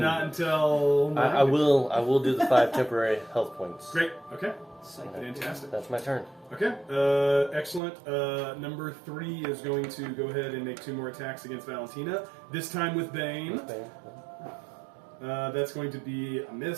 I will do the 5 temporary health points. Great. Okay. Psych. Fantastic. That's my turn. Okay. Excellent. Number 3 is going to go ahead and make 2 more attacks against Valentina. This time with Bane. That's going to be a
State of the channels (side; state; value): left; drops out; at 7.8 s